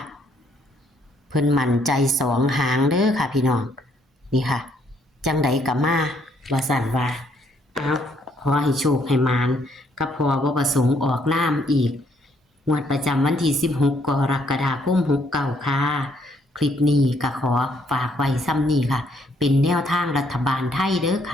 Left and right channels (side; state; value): both; normal; correlation 0.69